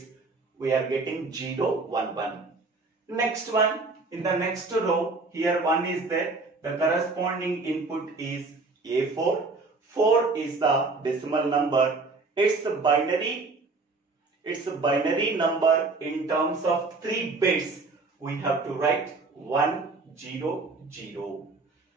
We are getting 0, 1, 1. Next one, in the next row, here 1 is there. The corresponding input is A4. 4 is the decimal number. It's a binary number in terms of 3 bits. We have to write 1, 0, 0.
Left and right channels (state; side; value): quieter; left; 3.7 dB